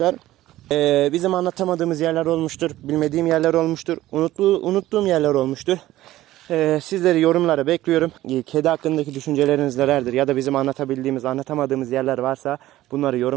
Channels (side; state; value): left; quieter; 15.4 dB